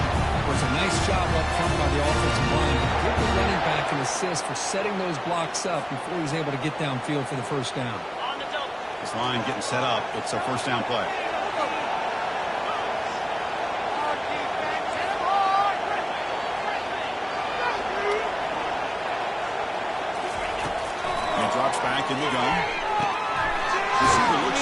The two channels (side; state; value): both; identical; correlation 1.00